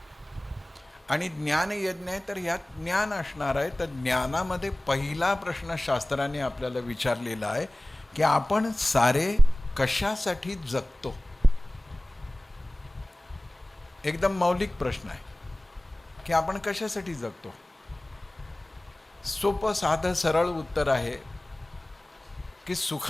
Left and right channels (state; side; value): normal; both; correlation 0.98